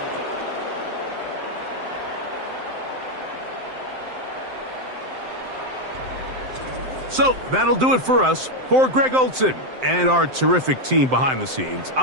So that'll do it for us. For Greg Olsen and our terrific team behind the scenes,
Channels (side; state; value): left; late; 7.7 ms